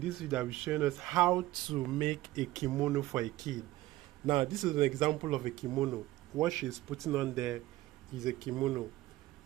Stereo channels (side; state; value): left; quieter; 16.7 dB